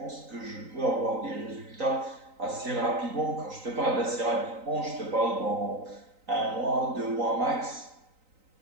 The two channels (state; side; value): late; left; 3.9 ms